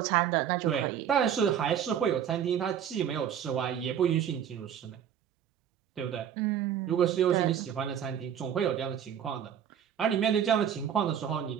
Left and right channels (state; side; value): quieter; left; 9.1 dB